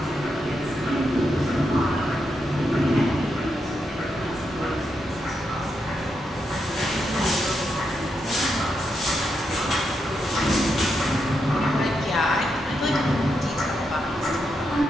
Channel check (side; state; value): both; normal; correlation 0.83